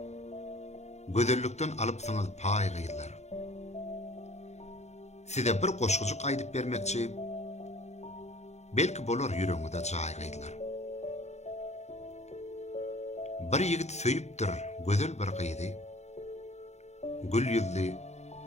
Gödellükden alıp saňyz pay gıylar. Size bir goşgujuk aýdyp bermekçi, belki bolar ýüregiňizde jaý gıylar. Bir ýigit söýüpdir gözel bir gyýdy, gül ýüzli,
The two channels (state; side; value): late; right; 0.32 ms